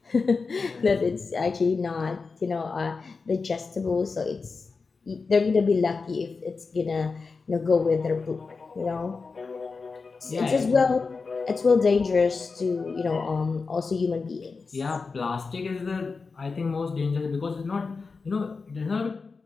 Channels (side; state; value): right; quieter; 4.5 dB